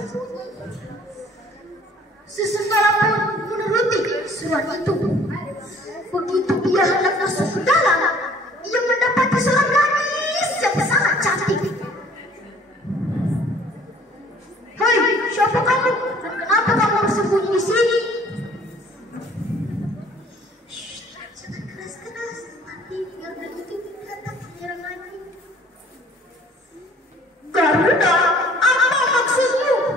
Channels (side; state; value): both; normal; correlation 0.54